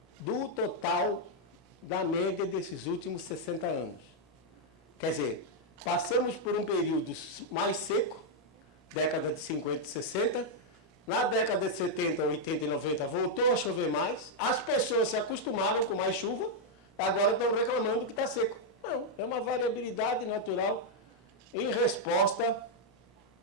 do total da média desses últimos 60 anos. Quer dizer, passamos por um período mais seco, década de 50 e 60, na década de 70, 80 e 90 voltou a chover mais, as pessoas se acostumaram com mais chuva, agora estão reclamando que está seco. Não, é uma variabilidade natural em resposta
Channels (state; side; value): normal; both; correlation -0.02